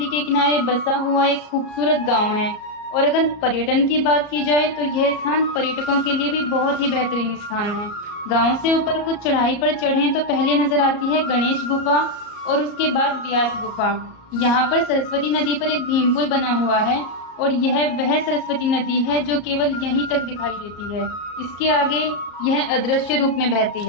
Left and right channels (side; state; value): right; late; 34 ms